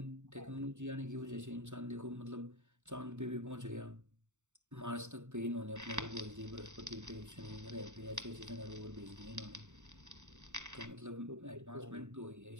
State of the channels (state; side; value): late; left; 0.84 ms